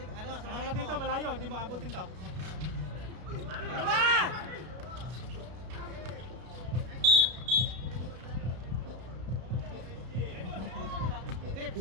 sa Ano dito, malayo, hindi mo abutin to. Ano ba? Steve,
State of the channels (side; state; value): left; late; 33 ms